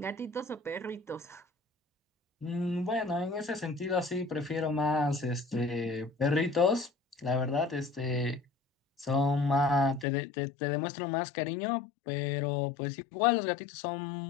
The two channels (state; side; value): drops out; right; at 10.1 s